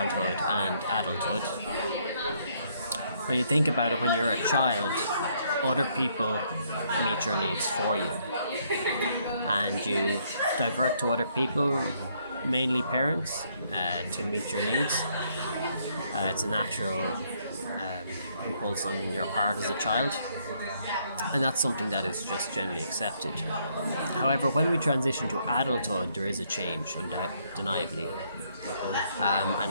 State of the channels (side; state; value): both; inverted; correlation -0.70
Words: and adulthood. When you think about it, when you're a child, other people meet your needs for you. And you divert to other people, mainly parents, to meet your needs. It's a natural impulse on your part as a child, and that's something that is just generally accepted. However, when we transition to adulthood, there is a change, undeniably.